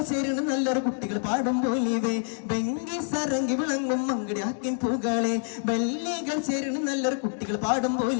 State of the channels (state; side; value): silent; right; 60 dB below the other